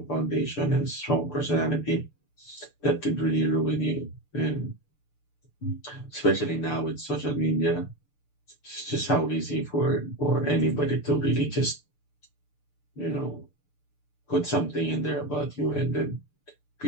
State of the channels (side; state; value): right; late; 6.8 ms